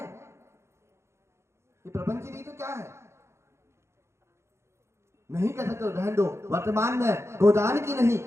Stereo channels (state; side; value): late; left; 0.13 ms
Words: ये प्रपंच नहीं तो क्या है? नहीं कर सकते, रहने दो। वर्तमान में गोदान की नहीं,